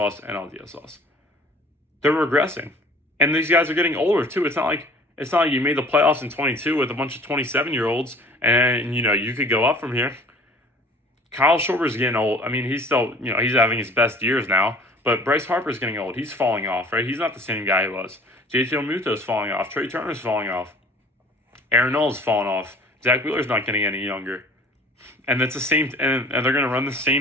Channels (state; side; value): normal; both; correlation 0.49